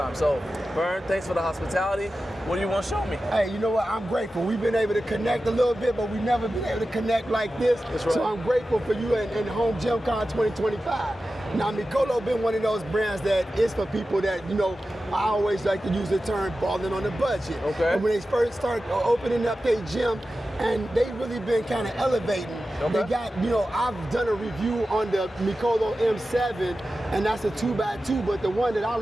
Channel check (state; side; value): normal; both; correlation 0.93